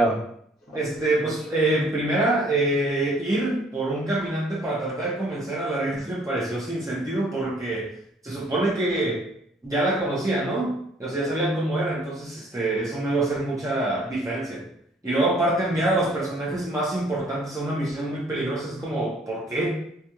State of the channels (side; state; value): both; normal; correlation 0.59